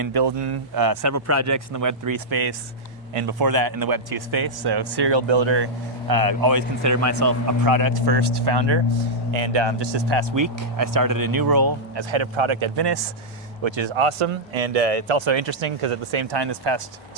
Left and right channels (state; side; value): normal; both; correlation -0.07